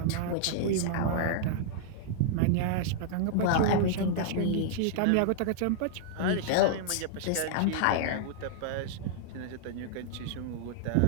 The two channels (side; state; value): both; different; correlation -0.01